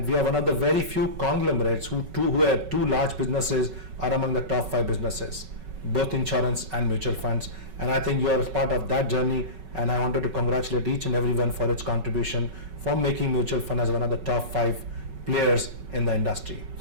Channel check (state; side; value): late; left; 5.3 ms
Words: we are one of the very few conglomerates who have two large businesses are among the top 5 businesses, both insurance and mutual funds. And I think you are part of that journey, and I wanted to congratulate each and everyone for its contribution for making mutual fund as one of the top 5 players in the industry.